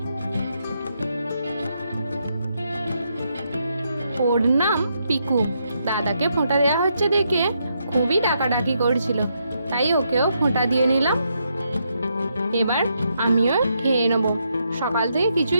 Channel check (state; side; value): inverted; both; correlation -0.79